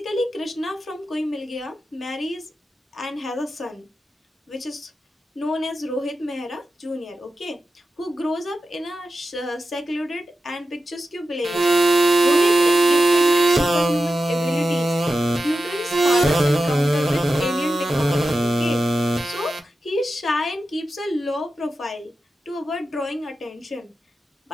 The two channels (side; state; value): both; normal; correlation 0.91